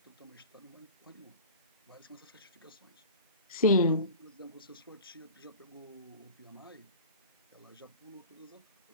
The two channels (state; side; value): inverted; both; correlation -0.38